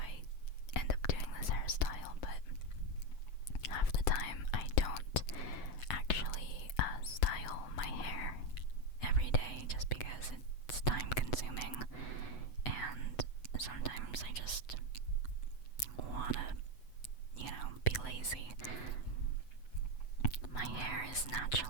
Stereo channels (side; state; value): right; late; 8.0 ms